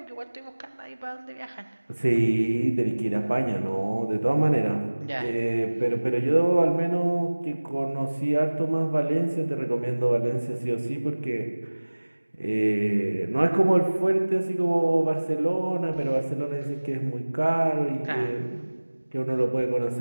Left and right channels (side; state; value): both; inverted; correlation -1.00